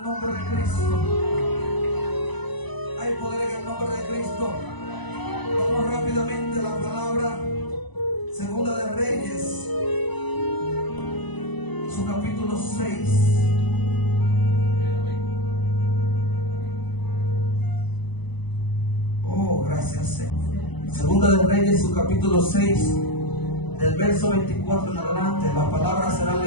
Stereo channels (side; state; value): right; late; 1.0 ms